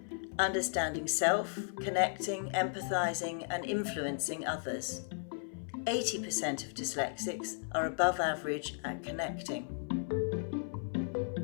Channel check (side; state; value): right; silent; 54 dB below the other